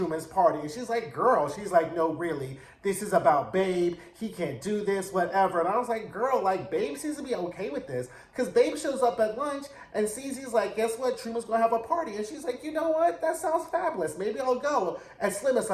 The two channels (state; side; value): identical; both; correlation 1.00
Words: party. And she's like, girl, she's like, no, really, this is about Babe. He can't do this, whatever. And I was like, girl, like, Babe seems to be okay with this. Because Babe shows up at lunch and CZ's like, guess what? Truman's going to have a party. And she's like, you know what? That sounds fabulous. Maybe I'll go. And Slim is